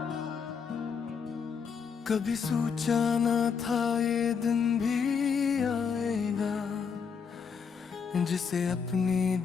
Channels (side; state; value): right; quieter; 6.3 dB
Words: कभी सोचा न था ये दिन भी आएगा, जिसे अपनी